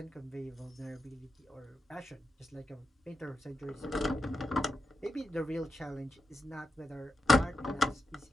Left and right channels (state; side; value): normal; both; correlation 0.87